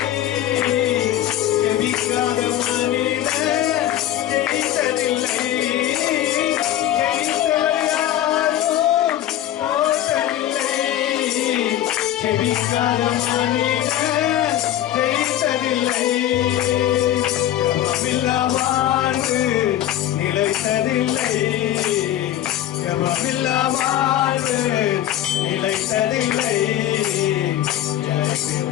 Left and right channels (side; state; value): right; quieter; 12.3 dB